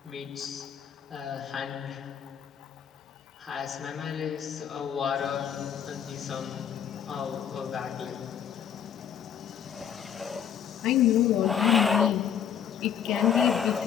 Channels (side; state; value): right; quieter; 8.6 dB